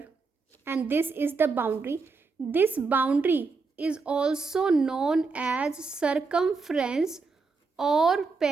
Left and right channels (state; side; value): quieter; left; 4.4 dB